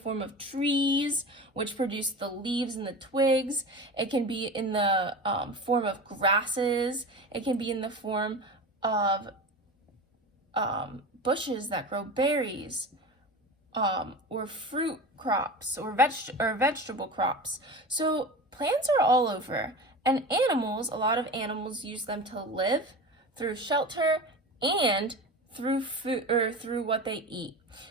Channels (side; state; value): both; normal; correlation 0.30